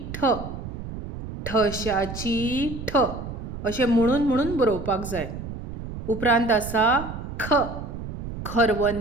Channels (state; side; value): noise; right; rumble, 9 dB below the sound